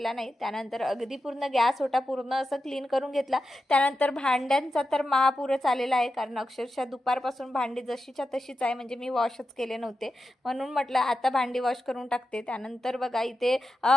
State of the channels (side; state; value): both; normal; correlation 0.90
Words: नाही. त्यानंतर अगदी पूर्ण गॅस ओटा पूर्ण असं क्लीन करून घेतला. त्यानंतर भांड्यांचा तर महापूरच आलेला आहे कारण अक्षरशः दुपारपासून भांडी जशीच्या तशीच आहे, म्हणजे मी वॉशच केले नव्हते म्हणून म्हटलं आता भांडी वॉश करून टाकते. त्यानंतर बघा इथे